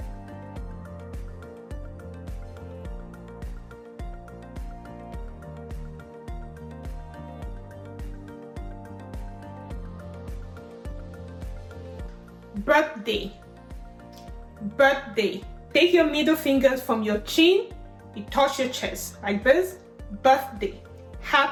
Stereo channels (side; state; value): both; identical; correlation 1.00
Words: Birthday. Take your middle fingers from your chin, you touch your chest like this. Birthday.